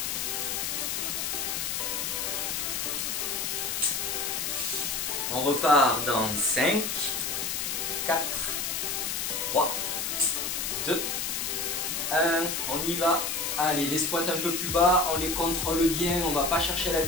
On repart dans 5, 4, 3, 2, 1. On y va. Allez, les squats un peu plus bas, on les contrôle bien, on ne va pas chercher la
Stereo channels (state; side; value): noise; left; hiss, 1 dB below the sound